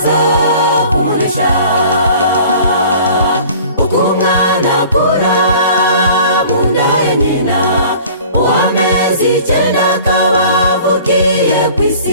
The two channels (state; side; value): inverted; both; correlation -0.47